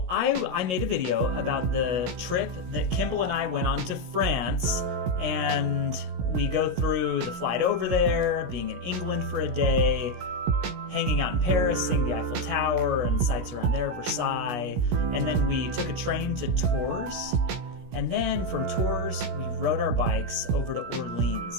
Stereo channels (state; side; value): late; left; 16 ms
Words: I made a video about the trip that Kimball and I went on to France, and we go through the flight over there, being in England for a day, hanging out in Paris, seeing the Eiffel Tower and sights around there, Versailles, and then we took a train to Tours, and then from Tours we rode our bikes over to